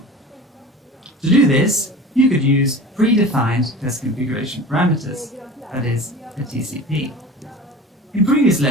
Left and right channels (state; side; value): normal; both; correlation 0.37